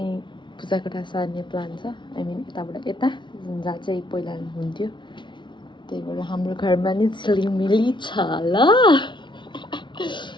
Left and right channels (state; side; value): late; right; 0.23 ms